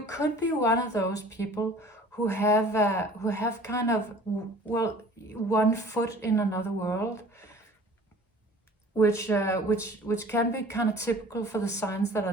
could be one of those people who have kind of, well, one foot in another world, which can be kind of typical for the signs that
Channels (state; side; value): normal; both; correlation 0.48